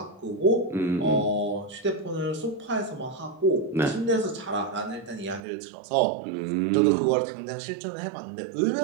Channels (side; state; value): left; drops out; at 5.4 s